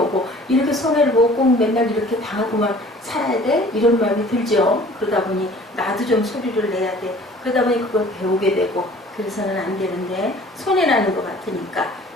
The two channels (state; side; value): normal; both; correlation 0.50